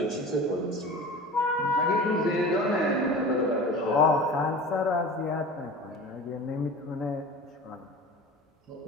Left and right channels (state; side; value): normal; both; correlation 0.36